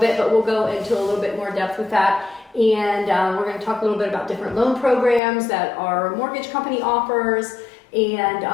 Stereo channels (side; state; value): right; drops out; at 5.2 s